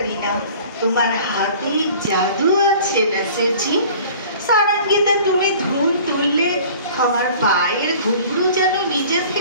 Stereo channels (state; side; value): inverted; both; correlation -0.47